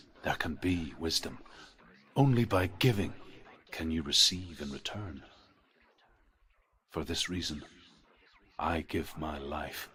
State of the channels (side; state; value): both; identical; correlation 1.00